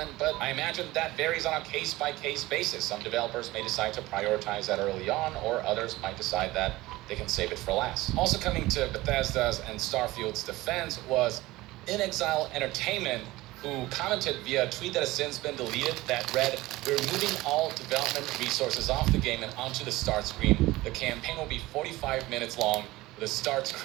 but I imagine that varies on a case-by-case basis. Some developers may decide to prioritize that early on, or others might decide that they can save it for last. Also coming to Bethesda's and Starfield's defense was inXile Entertainment, who commented via a tweet that has since been deleted that read, "We're moving all development resources off the game and onto the start screen. The campaign will be 45 minutes long. The start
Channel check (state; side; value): quieter; left; 18.8 dB